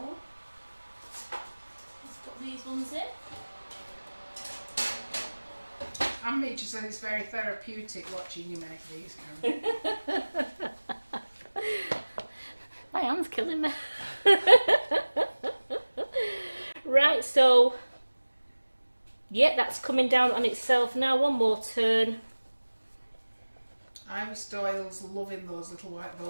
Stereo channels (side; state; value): both; inverted; correlation -1.00